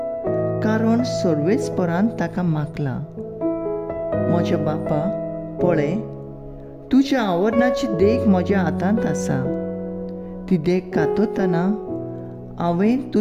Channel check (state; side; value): identical; both; correlation 1.00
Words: कारण सर्वेस्परान ताका मागला. म्हज्या बापा, पळय, तुज्या आवरणाची देख म्हज्या हातांत आसा. ती देख कातरतना हांवें